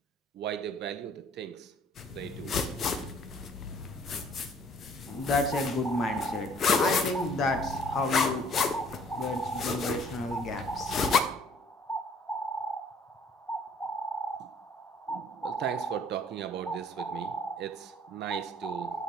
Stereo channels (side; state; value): both; normal; correlation 0.57